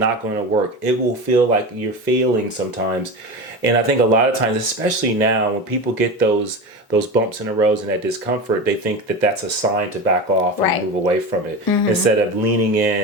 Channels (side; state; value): both; normal; correlation 0.26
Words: going to work. It will feel like you're failing sometimes. And I think a lot of times, especially now, when people get those bumps in the road and that discomfort, they think that that's a sign to back off and move away from it, instead of leaning